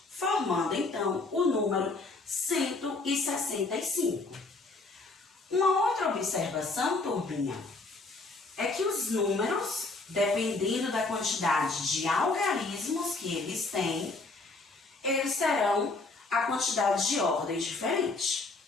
formando então o número 165. Uma outra observação, turminha, é que os números, dependendo da quantidade de algarismos que eles têm, eles terão a quantidade de ordens diferente.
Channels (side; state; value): right; quieter; 3.4 dB